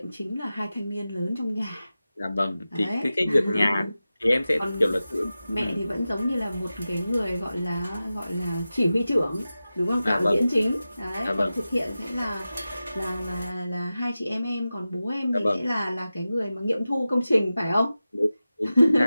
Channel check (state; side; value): inverted; both; correlation -0.94